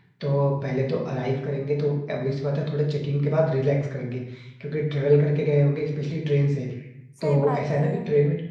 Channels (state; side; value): identical; both; correlation 1.00